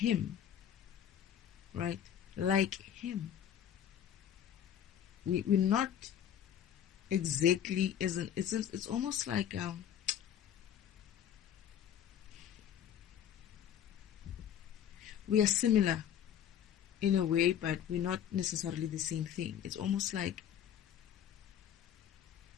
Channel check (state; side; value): quieter; right; 9.6 dB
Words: right? Like him. We're not exactly, it's almost like we are similar in a way, but we're not necessarily the same thing. It's almost like